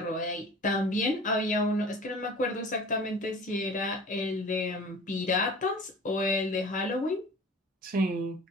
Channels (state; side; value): normal; both; correlation 0.42